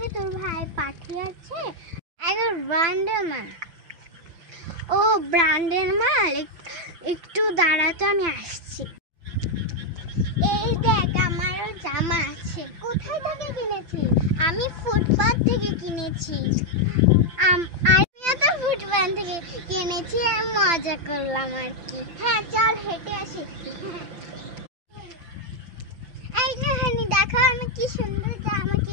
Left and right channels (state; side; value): late; left; 5.9 ms